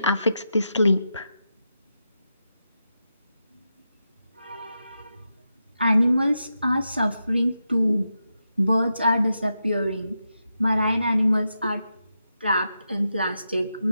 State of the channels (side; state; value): both; inverted; correlation -0.87